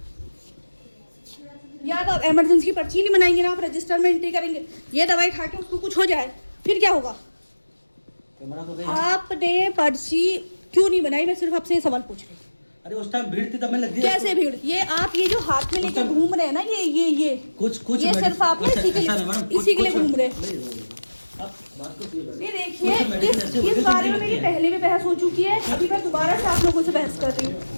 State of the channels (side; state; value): both; inverted; correlation -1.00